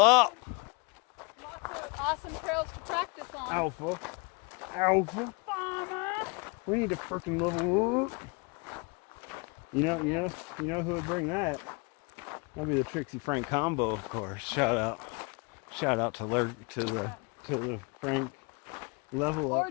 Lots of awesome trails to practice on. Alpha. Farmer. We need to freaking level up. You know who would bring that? That'd be the Trixie Frank combo, of course. Shout out to the Frank level Or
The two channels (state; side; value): quieter; right; 30.8 dB